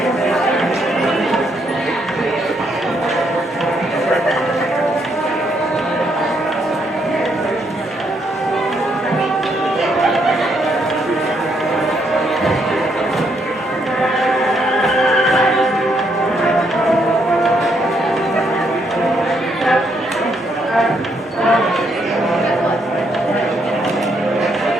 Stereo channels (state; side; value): normal; both; correlation 0.74